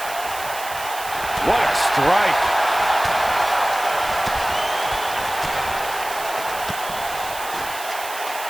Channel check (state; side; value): noise; right; hiss, 11 dB below the sound